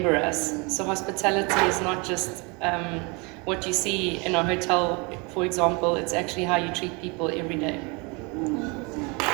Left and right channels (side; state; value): left; quieter; 29.5 dB